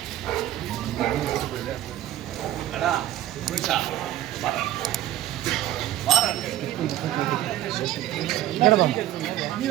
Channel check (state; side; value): quieter; left; 13.4 dB